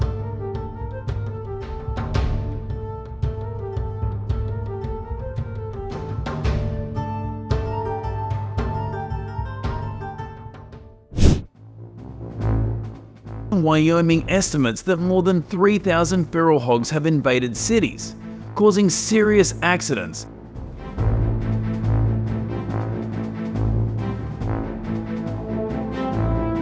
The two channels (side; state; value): both; identical; correlation 1.00